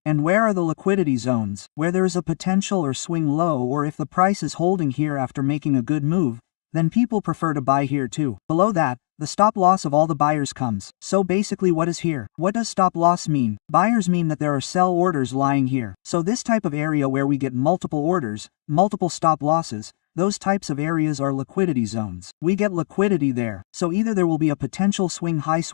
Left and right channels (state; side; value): silent; right; digital silence